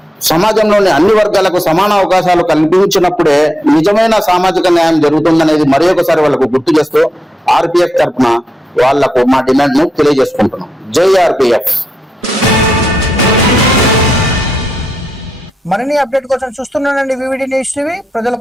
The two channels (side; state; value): both; normal; correlation 0.85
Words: సమాజంలోని అన్ని వర్గాలకు సమాన అవకాశాలు కల్పించినప్పుడే నిజమైన సామాజిక న్యాయం జరుగుతుందనేది మరి ఒకసారి వాళ్ళకు గుర్తు చేస్తూ ఆర్పిఎఫ్ తరఫున వాళ్లకు మా డిమాండ్ ను తెలియజేసుకుంటున్నాం. జై ఆర్పిఎఫ్. మరిన్ని అప్డేట్ కోసం చూస్తున్నానండి వివిడి న్యూస్ టీవీ, ప్రజల